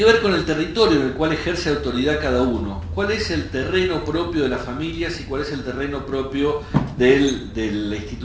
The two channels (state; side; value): identical; both; correlation 1.00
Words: ver con el territorio en el cual ejerce autoridad cada uno. ¿Cuál es el terreno propio de las familias y cuál es el terreno propio de la